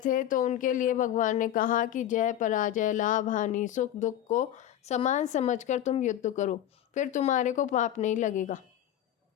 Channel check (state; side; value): quieter; right; 11.6 dB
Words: तो उनके लिए भगवान ने कहा कि जय पराजय, लाभ हानि, सुख दुख को समान समझकर तुम युद्ध करो, फिर तुम्हारे को पाप नहीं लगेगा।